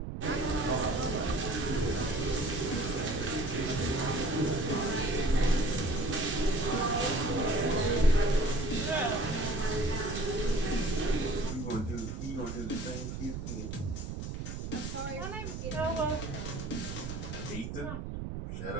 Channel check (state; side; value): noise; right; rumble, 6 dB below the sound